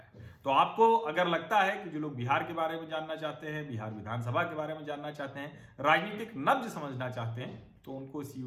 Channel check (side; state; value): both; identical; correlation 1.00